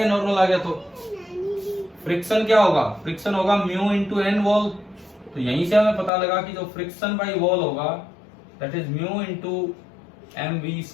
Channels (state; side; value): drops out; right; at 6.1 s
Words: नॉर्मल आ गया। तो फ्रिक्शन क्या होगा, फ्रिक्शन होगा म्यू इंटू एन वॉल, तो यहीं से हमें पता लगा कि जो फ्रिक्शन बाई वॉल होगा that is mu into M V